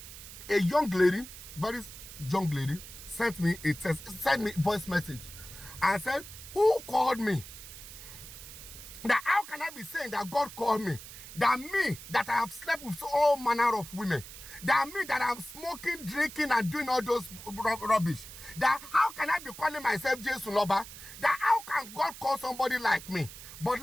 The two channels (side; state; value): right; noise; hiss, 14 dB below the sound